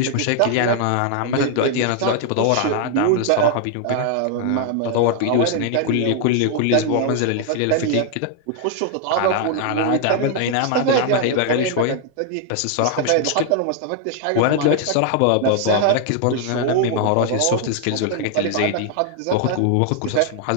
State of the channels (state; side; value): different; both; correlation 0.00